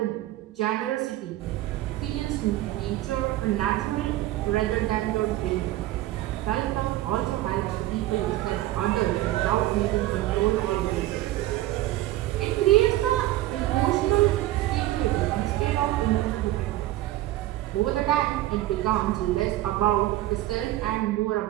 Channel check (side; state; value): left; quieter; 15.6 dB